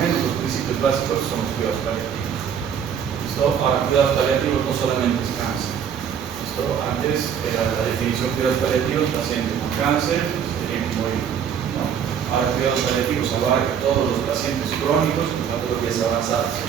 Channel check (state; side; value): quieter; left; 8.0 dB